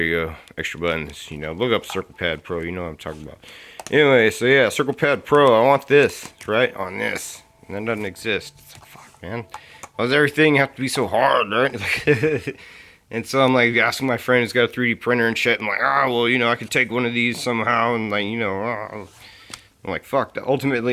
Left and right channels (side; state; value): both; identical; correlation 1.00